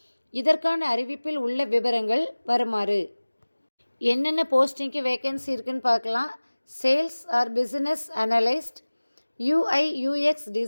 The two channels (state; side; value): inverted; both; correlation -1.00